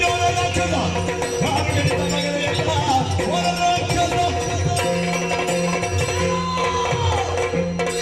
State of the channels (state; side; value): identical; both; correlation 1.00